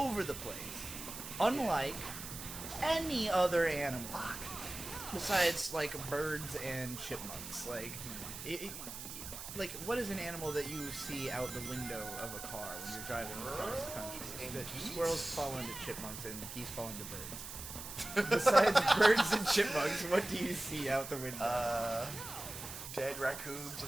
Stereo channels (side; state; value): right; noise; hiss, 9 dB below the sound